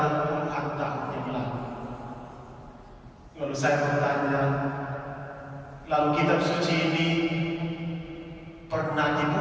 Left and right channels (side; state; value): both; identical; correlation 1.00